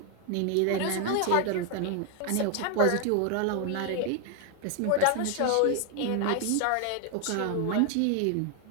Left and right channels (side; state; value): both; different; correlation 0.01